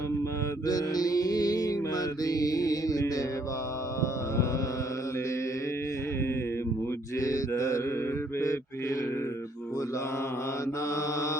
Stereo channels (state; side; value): normal; both; correlation 0.68